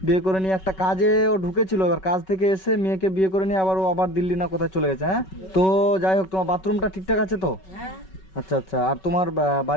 বিয়ে করে নিয়ে একটা কাজে ও ঢুকেছিল, এবার কাজ থেকে এসে মেয়েকে বিয়ে করে নিয়ে আবার ও আবার দিল্লি না কোথায় চলে গেছে। হ্যাঁ, তো যাই হোক, তোমার বাথরুমটা ঠিকঠাক আছে তো? হ্যাঁ, আচ্ছা আচ্ছা। আর তোমার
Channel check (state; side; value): late; right; 5.3 ms